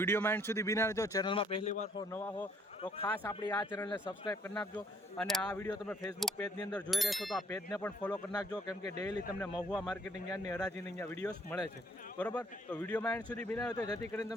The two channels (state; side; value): normal; both; correlation 0.64